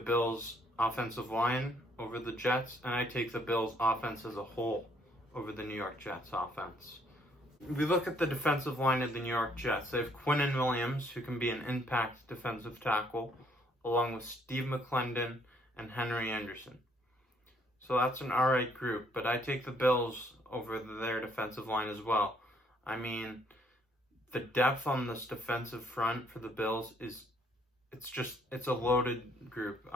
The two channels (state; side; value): normal; both; correlation 0.66